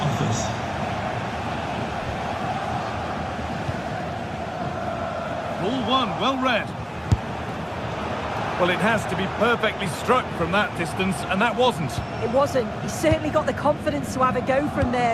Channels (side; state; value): both; identical; correlation 1.00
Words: Ball one, well read. Well, it has to be perfectly struck from that distance, and that wasn't. It wasn't. He's certainly got the confidence to have a go from